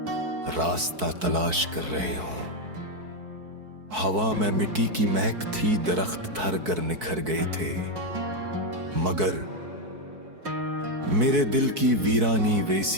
रास्ता तलाश कर रहे हों। हवा में मिट्टी की महक थी, दरख्त धर कर निखर गए थे, मगर मेरे दिल की वीरानी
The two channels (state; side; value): late; left; 4.6 ms